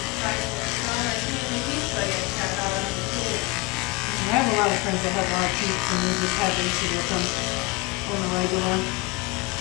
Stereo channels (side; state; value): right; quieter; 24.9 dB